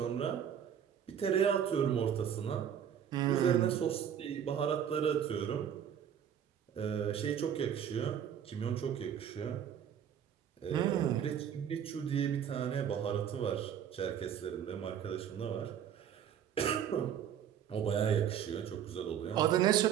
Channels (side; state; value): left; quieter; 9.0 dB